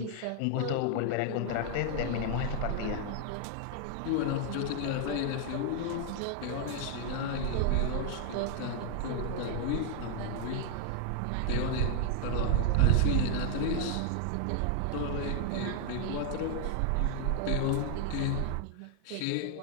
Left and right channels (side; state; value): both; different; correlation 0.00